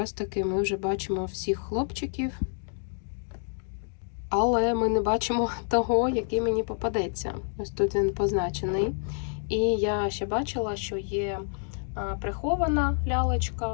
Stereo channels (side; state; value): right; silent; 59 dB below the other